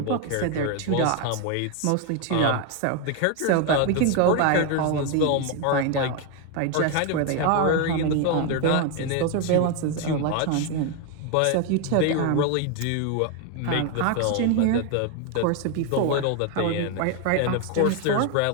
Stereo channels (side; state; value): both; different; correlation 0.01